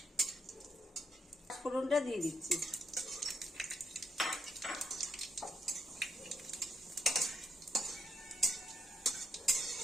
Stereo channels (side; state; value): both; normal; correlation 0.76